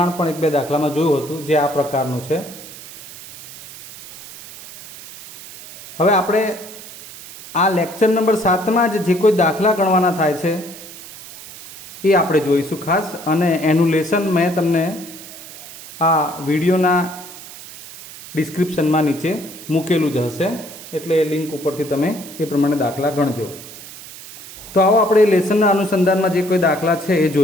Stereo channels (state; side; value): noise; right; hiss, 15 dB below the sound